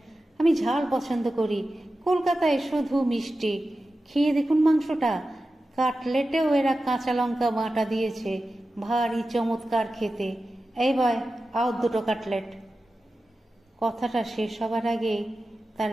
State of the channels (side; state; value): both; normal; correlation 0.93